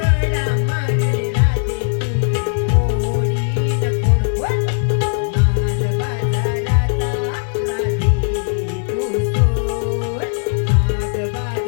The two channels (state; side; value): silent; right; digital silence